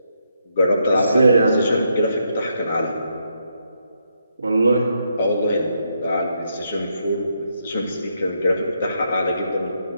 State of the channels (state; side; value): inverted; both; correlation -0.78